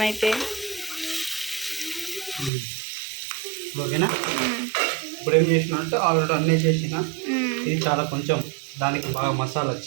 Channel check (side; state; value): left; drops out; at 2.5 s